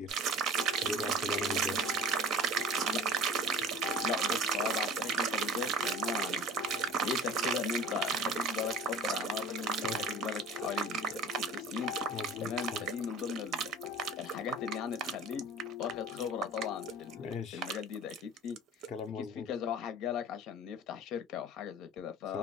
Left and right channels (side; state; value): both; normal; correlation 0.43